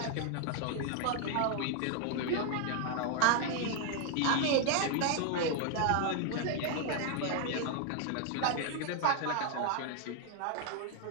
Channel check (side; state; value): both; different; correlation 0.00